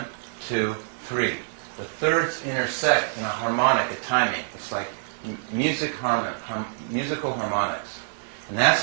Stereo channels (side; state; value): left; silent; 61 dB below the other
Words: 2, 3. The thirds intersect in a harmonic, a timing. It's like musical harmonics. And that's